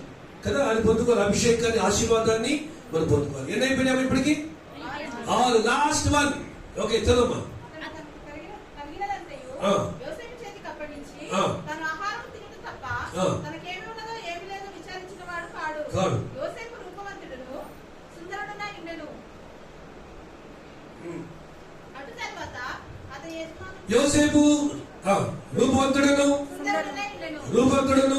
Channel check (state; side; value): identical; both; correlation 1.00